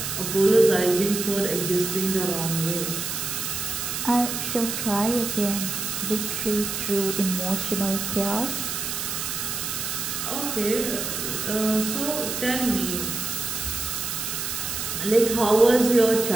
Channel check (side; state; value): right; noise; hiss, 3 dB below the sound